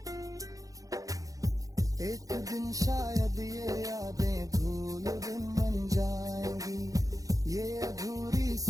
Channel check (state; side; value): late; left; 0.17 ms